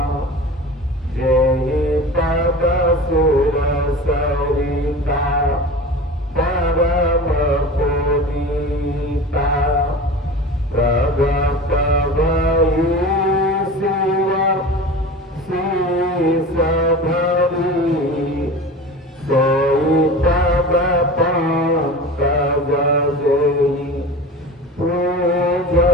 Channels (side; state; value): both; normal; correlation 0.34